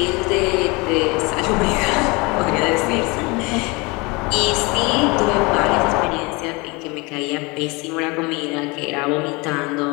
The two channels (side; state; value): right; quieter; 26.5 dB